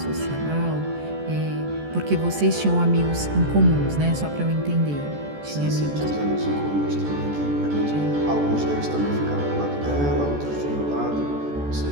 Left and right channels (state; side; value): late; left; 14 ms